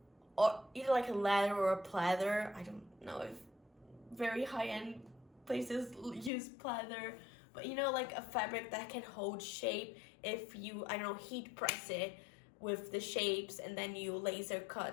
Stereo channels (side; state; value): right; drops out; at 6.3 s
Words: or either like a leather or a pleather. I don't know if very high-end places use pleather, but you know, like a fabric that can hold shape if you, I don't know, heat press it with the shapes and then you laser